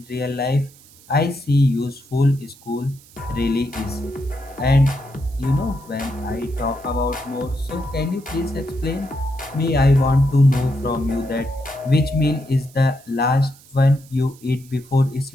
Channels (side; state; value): right; noise; hiss, 25 dB below the sound